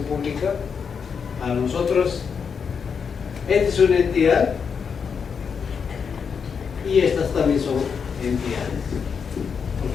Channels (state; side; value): quieter; right; 6.3 dB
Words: pública, a nosotros, esta es una entidad y estas también son entidades,